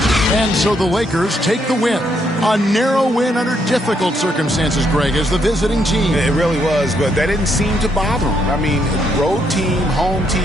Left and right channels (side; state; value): both; normal; correlation 0.75